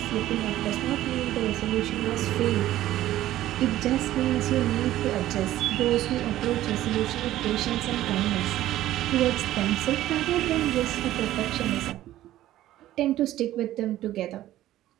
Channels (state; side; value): quieter; left; 14.1 dB